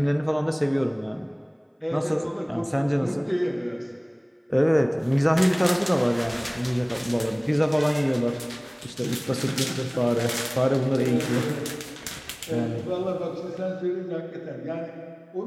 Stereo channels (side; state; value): both; identical; correlation 1.00